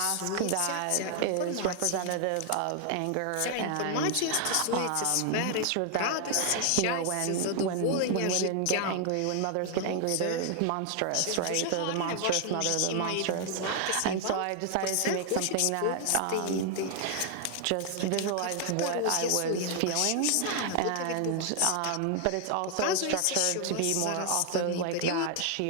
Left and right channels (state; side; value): different; both; correlation 0.00